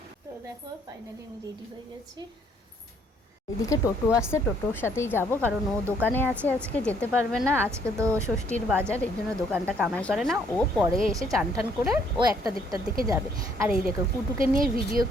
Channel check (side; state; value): both; normal; correlation 0.66